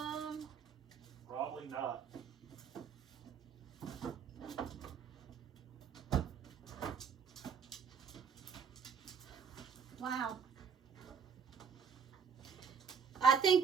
Probably not. Wow. I think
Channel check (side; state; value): left; quieter; 6.4 dB